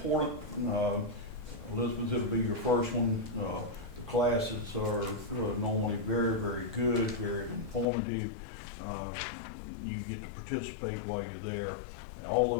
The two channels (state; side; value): drops out; right; at 7.9 s